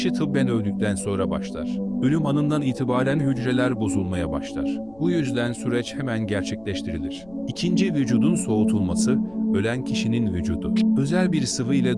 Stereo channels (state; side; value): noise; left; rumble, 25 dB below the sound